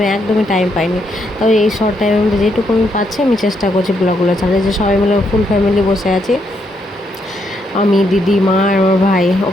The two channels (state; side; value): normal; both; correlation 0.77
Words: একদমই টাইম পাইনি। তবে এই শর্ট টাইমের মধ্যে যেটুকু আমি পাচ্ছি আমি চেষ্টা করছি ব্লগগুলো ছাড়তে। যে সবাই মিলে ফুল ফ্যামিলি বসে আছি, আমি, দিদি, মা আর আমার ভাই।